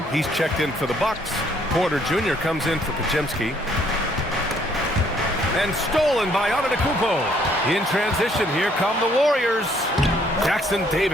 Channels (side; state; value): both; normal; correlation 0.65